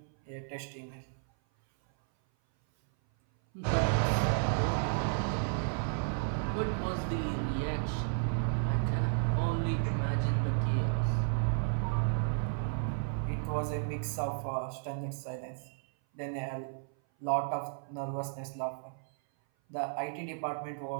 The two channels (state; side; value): silent; left; 56 dB below the other